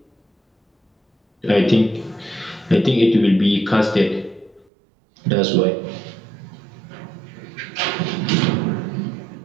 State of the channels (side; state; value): left; drops out; at 4.7 s